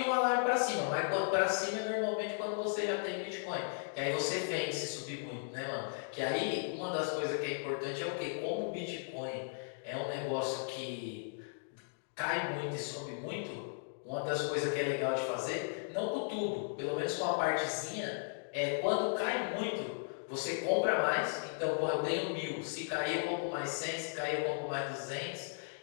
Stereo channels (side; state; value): right; silent; digital silence